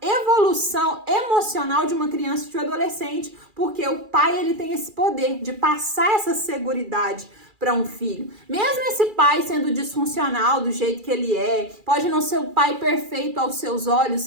evolução emocional de uma criança e de um adolescente, porque o pai ele tem esse poder de passar essa seguridade para um filho. Mesmo esse pai sendo disfuncional do jeito que ele é, pode não ser o pai perfeito aos seus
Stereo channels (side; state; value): left; late; 2.4 ms